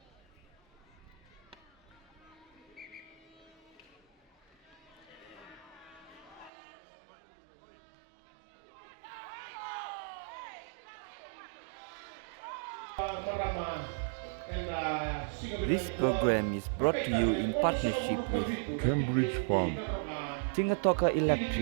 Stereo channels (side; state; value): left; drops out; at 6.5 s